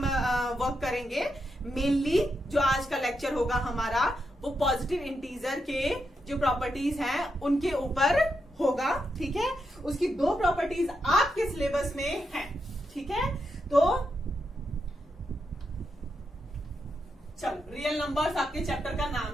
वर्क करेंगे। मेनली जो आज का लेक्चर होगा हमारा वो पॉजिटिव इंटीजर के जो प्रॉपर्टीज हैं उनके ऊपर होगा। ठीक है, उसकी 2 प्रॉपर्टीज आपके सिलेबस में हैं। ठीक है, तो चलो, रियल नंबर्स आपके चैप्टर का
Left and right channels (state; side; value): normal; both; correlation 0.84